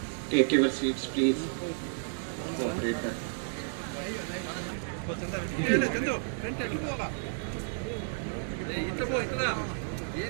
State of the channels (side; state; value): left; silent; digital silence